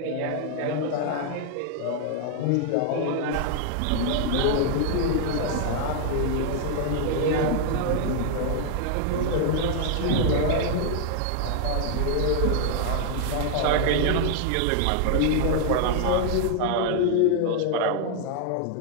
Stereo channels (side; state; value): both; different; correlation 0.00